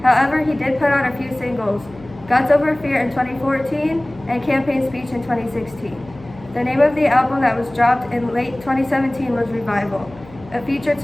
However, he did put out a few singles, Guts Over Fear in 2014 and Campaign Speech in 2016. The name of the album that was dropped in late 2017 was Revival. It featured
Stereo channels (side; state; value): left; noise; hum, 21 dB below the sound